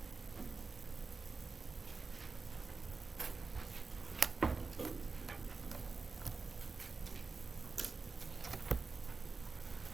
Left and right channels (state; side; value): quieter; left; 4.3 dB